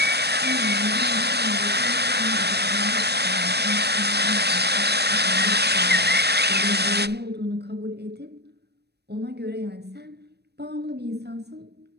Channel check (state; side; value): late; left; 0.48 ms